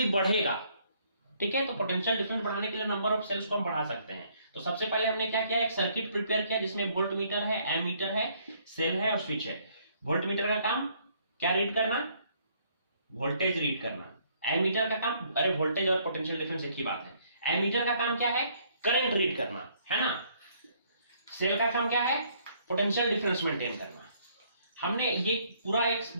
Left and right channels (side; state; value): both; inverted; correlation -0.66